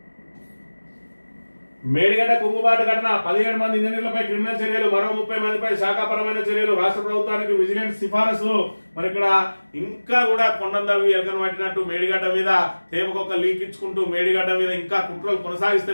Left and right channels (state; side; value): inverted; both; correlation -1.00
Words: మేడిగడ్డ కుంగుబాటు ఘటన 17 మంది ఇంజనీర్లపై క్రిమినల్ చర్యలు, మరో 30 మందిపై శాఖాపరమైన చర్యలు, రాష్ట్ర ప్రభుత్వానికి విజిలెన్స్ సిఫారసు. మరి ఇక్కడ ఇంకా కూడా కొండందవి ఎలకను పట్టినట్టు మేడిగడ్డ మీద తేపకొక లీక్ ఇచ్చుకుంటూ మేడిగడ్డ మీద ఇంకా కుట్రలు